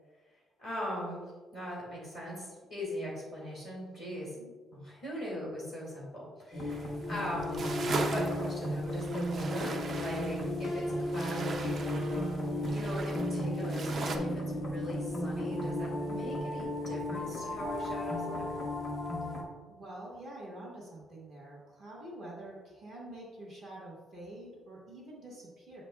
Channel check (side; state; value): both; normal; correlation 0.76